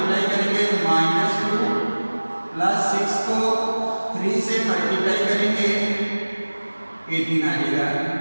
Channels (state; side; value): inverted; both; correlation -1.00